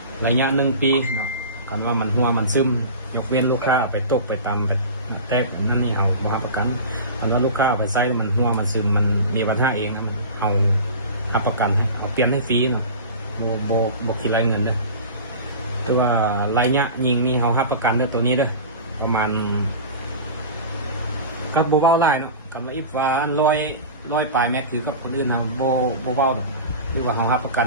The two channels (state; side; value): inverted; both; correlation -0.33